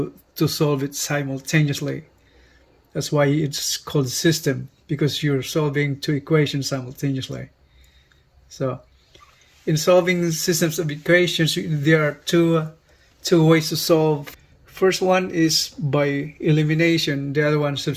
solve it simultaneously. That's why it's called system, because you're solving two equations simultaneously. So in solving systems of equations, there are two ways to solve. First one is by elimination, the other one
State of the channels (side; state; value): both; identical; correlation 1.00